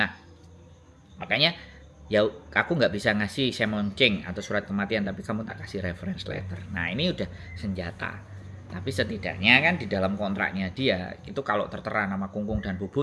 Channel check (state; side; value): identical; both; correlation 1.00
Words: makanya ya aku nggak bisa ngasih semonceng atau surat kematian, tapi kamu tak kasih reference letter. Nah ini udah senjata. Tapi setidaknya kan di dalam kontraknya dia itu kalau tertera nama Kungkung dan